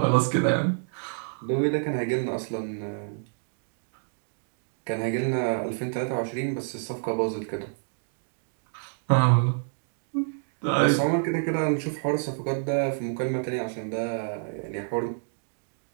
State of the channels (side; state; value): left; silent; digital silence